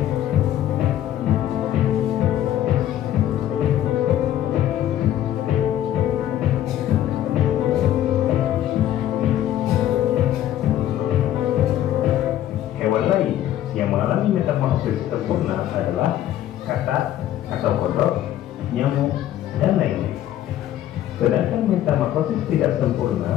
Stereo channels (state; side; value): quieter; right; 12.1 dB